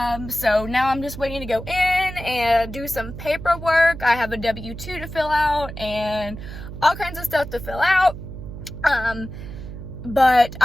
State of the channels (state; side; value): noise; right; hum, 10 dB below the sound